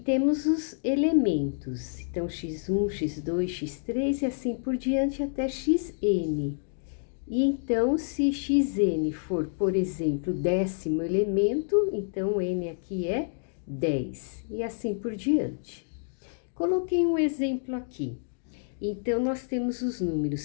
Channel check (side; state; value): right; silent; digital silence